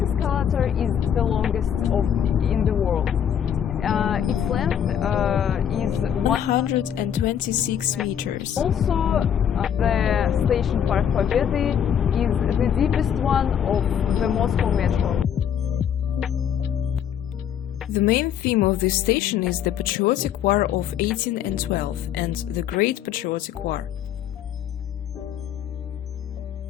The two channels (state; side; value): quieter; right; 8.9 dB